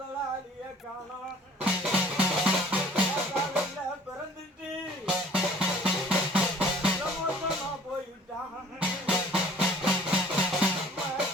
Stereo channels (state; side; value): normal; both; correlation 0.52